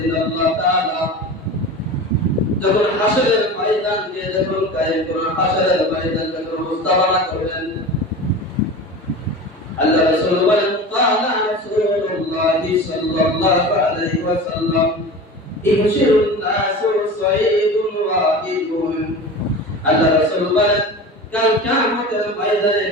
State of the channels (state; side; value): normal; both; correlation 0.32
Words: আল্লাহ তাআলা যখন হাসরের ময়দানকে যখন কায়েম করবেন, হাসরের ময়দান যখন মুস্তাবানা করবেন, আল্লাহ রাসূল বলেন ক্বালা রাসূলুল্লাহ সাল্লাল্লাহু আলাইহি ওয়াসাল্লাম ইহশিরুন নাসু সাইদুন ওয়াহিদুন। আল্লাহ রাসূল বলেন কাল কিয়ামতের ময়দানে